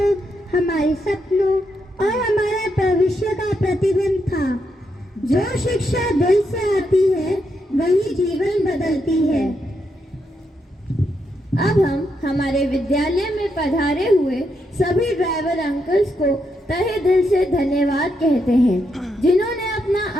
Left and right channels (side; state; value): both; normal; correlation 0.81